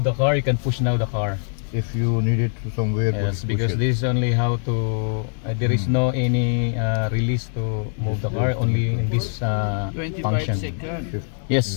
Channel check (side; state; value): right; silent; digital silence